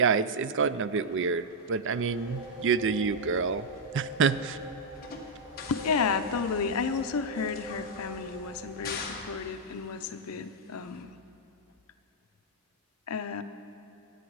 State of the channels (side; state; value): both; normal; correlation -0.05